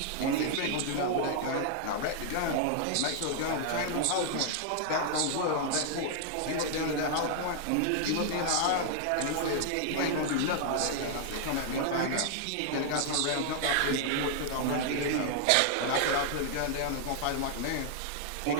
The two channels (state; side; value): different; both; correlation -0.01